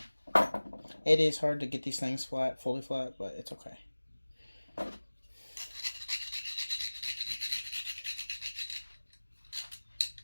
it is hard to get these things fully flat, but it's okay.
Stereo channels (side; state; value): both; inverted; correlation -1.00